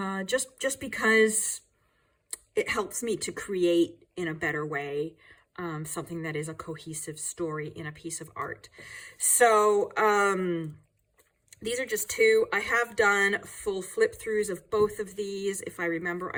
just because it helps me to create in a better way, something that is a cohesive story in a piece of art. So these are just two. I have done full flip throughs of both of these. If I remember,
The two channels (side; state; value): both; identical; correlation 1.00